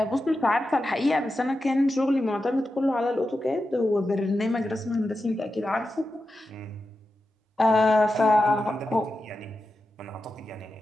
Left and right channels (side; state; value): both; normal; correlation 0.90